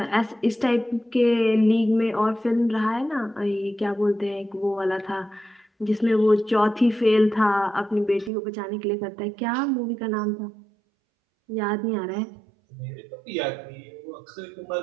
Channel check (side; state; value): left; drops out; at 8.3 s